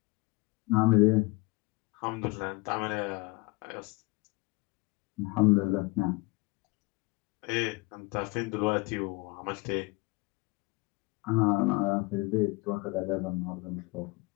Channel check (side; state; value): right; quieter; 25.4 dB